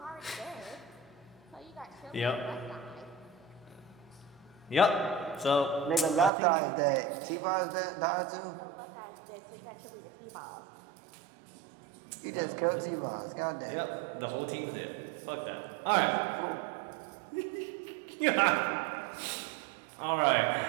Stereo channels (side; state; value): left; drops out; at 6.3 s